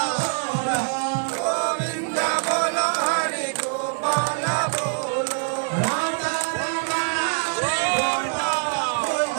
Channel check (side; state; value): left; silent; digital silence